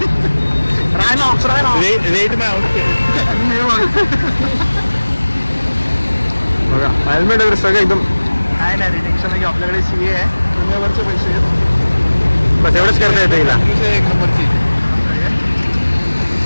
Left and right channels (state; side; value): inverted; both; correlation -1.00